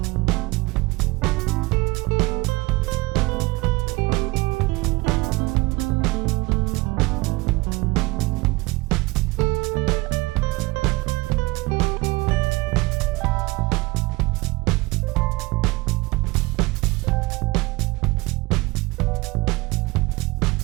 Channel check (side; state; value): left; quieter; 22.9 dB